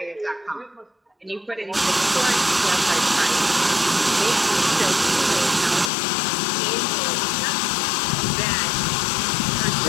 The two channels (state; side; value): drops out; right; at 5.9 s